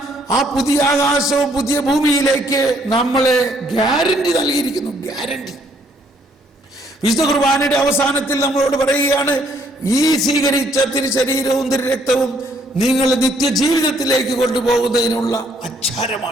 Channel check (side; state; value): both; normal; correlation 0.66